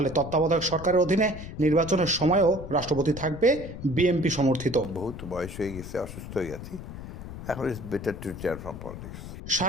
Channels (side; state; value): left; noise; rumble, 11 dB below the sound